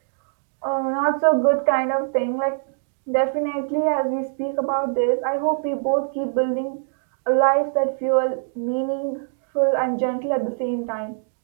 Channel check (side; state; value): left; silent; digital silence